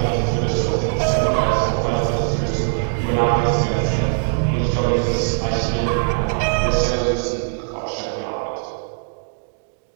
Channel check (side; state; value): left; silent; digital silence